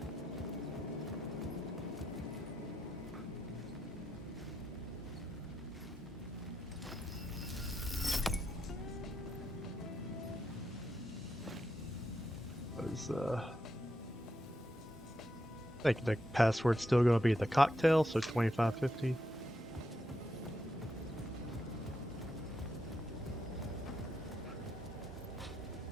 I think the password's still going to be the cocktail, so 2550.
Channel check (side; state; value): both; normal; correlation 0.83